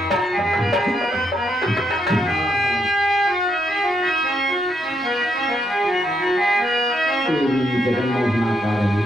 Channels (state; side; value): normal; both; correlation 0.77